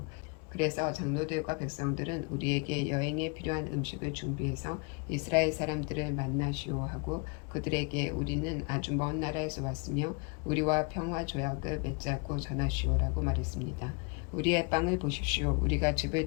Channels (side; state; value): right; quieter; 31.7 dB